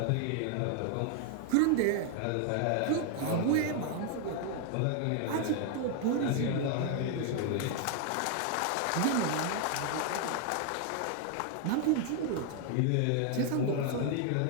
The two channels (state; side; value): different; both; correlation 0.00